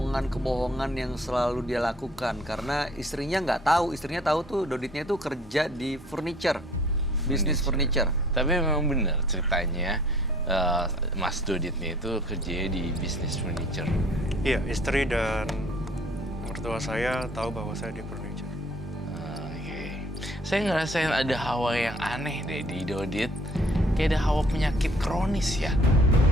yang selalu dia lakukan, karena istrinya nggak tahu. Istrinya tahu tuh Doditnya tuh kerja di bisnis furniture. Tapi memang benar ceritanya, Mas Doditnya itu kerjanya di bisnis furniture. Iya, istri dan mertua saya tahu bahwa saya di furniture. Saya ngerasain ada hawa yang aneh deh di Dodit. Kayak ada hawa penyakit kronis ya.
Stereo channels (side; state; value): both; normal; correlation 0.55